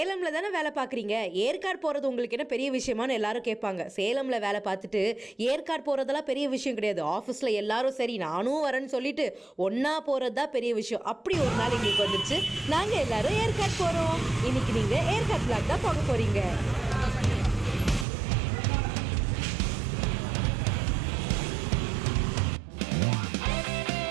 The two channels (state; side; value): drops out; left; at 18.1 s